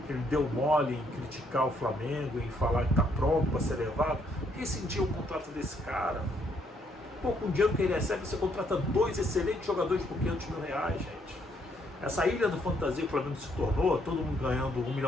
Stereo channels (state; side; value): normal; both; correlation 0.71